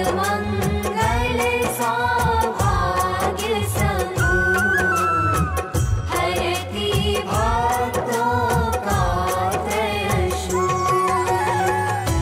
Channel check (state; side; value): identical; both; correlation 1.00